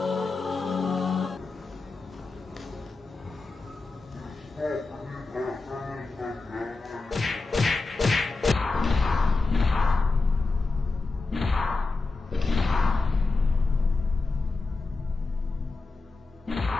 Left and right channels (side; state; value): right; quieter; 3.7 dB